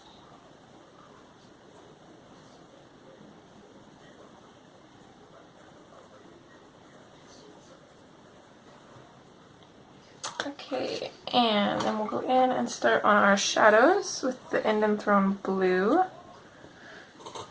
Okay, and then we'll go in and start on our shadows with the Indian Throne Blue.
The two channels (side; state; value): both; identical; correlation 1.00